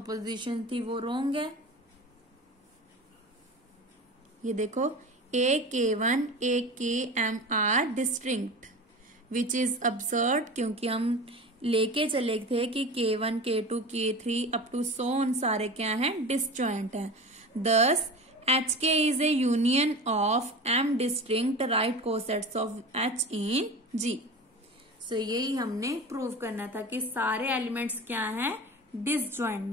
थी वो रॉन्ग है। ये देखो, A K1 A Km are distinct, which is absurd, क्योंकि हम लेके चले थे कि K1, K2, K3 up to so on सारे क्या हैं, डिसजॉइंट हैं। Thus HK is a union of M distinct right cosets of H in G। सो यही हमने प्रूव करना था कि सारे एलिमेंट्स क्या हैं,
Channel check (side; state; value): both; normal; correlation 0.32